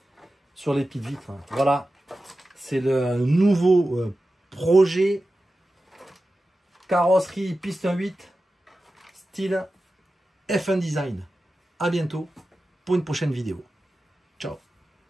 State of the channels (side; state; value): both; normal; correlation 0.93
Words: sur les petites vitres. Voilà, c'est le nouveau projet carrosserie piste 1/8 style F1 design. À bientôt. pour une prochaine vidéo. Ciao.